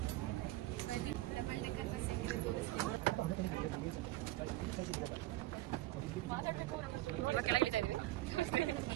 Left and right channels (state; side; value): quieter; left; 17.3 dB